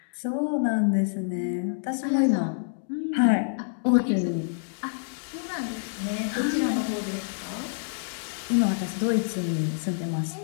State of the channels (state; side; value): silent; right; digital silence